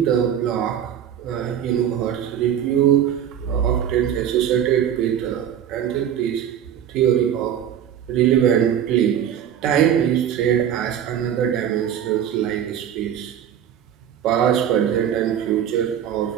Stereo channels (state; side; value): quieter; left; 9.7 dB